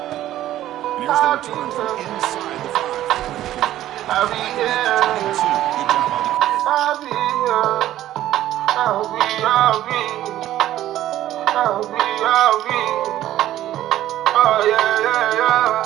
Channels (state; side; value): quieter; left; 13.4 dB